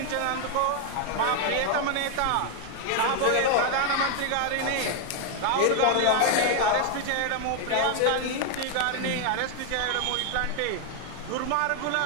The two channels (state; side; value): different; both; correlation 0.00